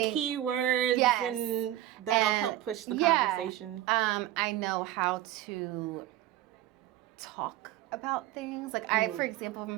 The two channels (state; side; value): quieter; left; 13.8 dB